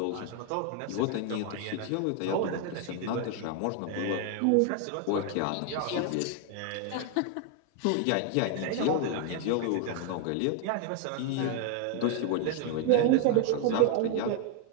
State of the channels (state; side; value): different; both; correlation 0.01